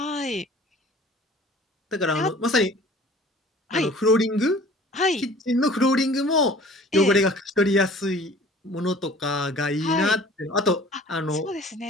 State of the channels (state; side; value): normal; both; correlation 0.48